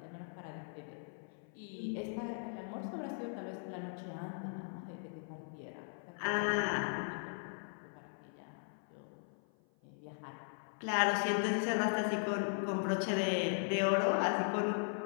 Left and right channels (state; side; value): silent; right; 52 dB below the other